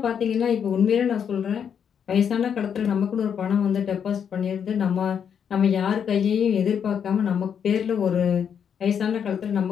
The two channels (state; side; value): quieter; right; 7.8 dB